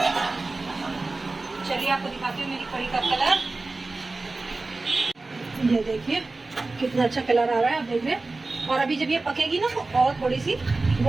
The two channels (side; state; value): left; quieter; 3.4 dB